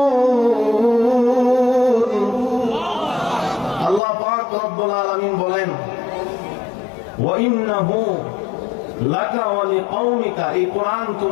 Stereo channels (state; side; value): drops out; right; at 4.0 s